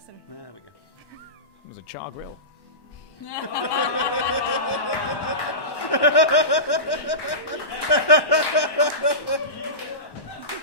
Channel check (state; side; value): late; right; 1.1 ms